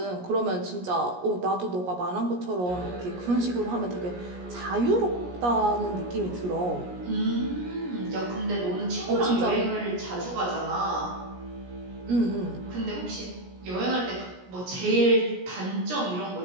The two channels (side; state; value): left; late; 17 ms